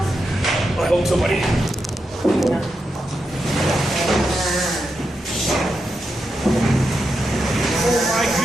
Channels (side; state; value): both; normal; correlation 0.86